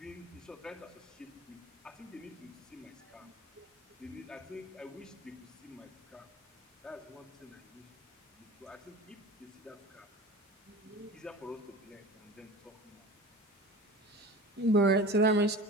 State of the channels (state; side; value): normal; both; correlation 0.37